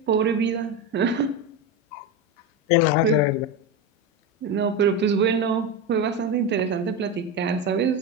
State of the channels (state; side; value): normal; both; correlation 0.16